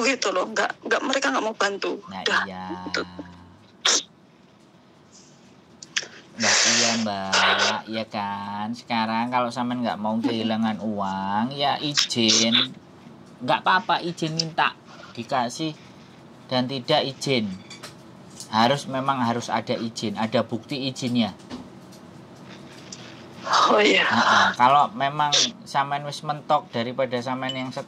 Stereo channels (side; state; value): both; identical; correlation 1.00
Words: gitu loh, nggak mereka nggak mau bantu. Nah udah, iya. gitu. Nah iya mbak, ya kan. Sekarang kalau sampean nggak mau kehilangan uang, ya izin, nggak apa-apa, izin minta dikasih dan tidak izin. Memang harus ada izin, ada bukti izinnya. Oh iya. Kalau memang sampean wis mentok daripada sampean yang